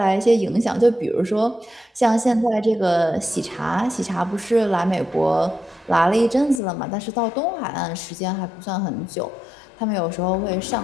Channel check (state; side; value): drops out; right; at 6.6 s